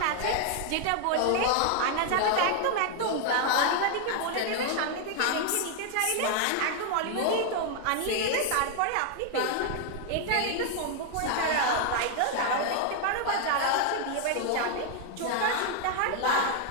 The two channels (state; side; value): different; both; correlation 0.00